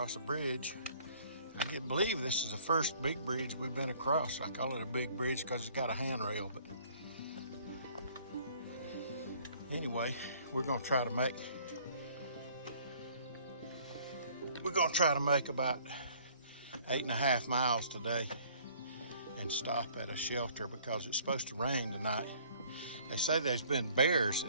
a bridge. I can't believe this is the first big bridge we've been across. I call it a big bridge because it's got a handrail, but anyway, we're gonna try to make about 8.5 miles today and stop at a shelter because it's supposed to rain tonight. They say there's been bears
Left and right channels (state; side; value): inverted; both; correlation -0.57